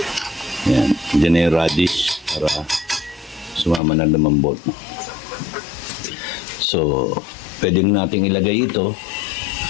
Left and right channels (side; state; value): right; drops out; at 3.8 s